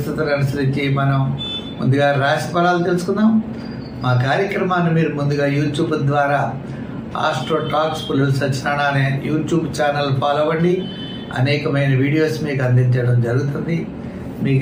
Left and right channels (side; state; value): both; identical; correlation 1.00